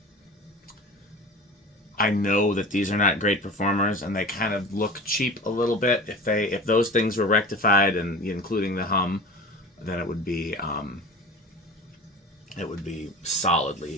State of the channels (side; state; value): both; normal; correlation 0.35